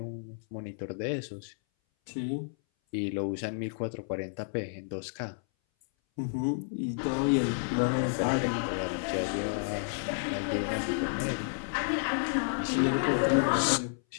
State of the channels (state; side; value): silent; right; 57 dB below the other